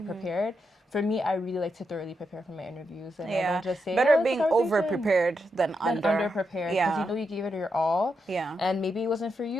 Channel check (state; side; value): normal; both; correlation 0.84